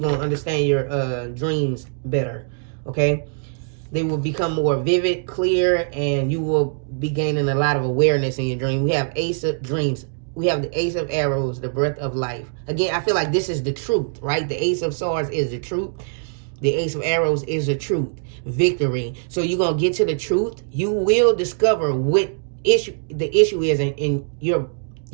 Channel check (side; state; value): left; silent; digital silence